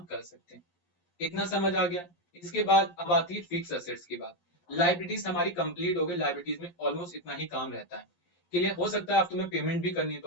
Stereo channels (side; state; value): right; late; 11 ms